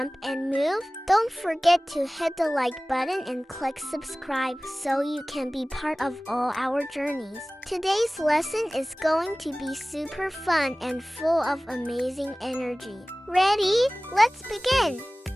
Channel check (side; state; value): both; normal; correlation 0.98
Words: and move? Don't forget to hit the like button and click subscribe so you can be part of all our journeys. Today's lesson is going to be super fun and full of amazing energy. Ready? Let's begin!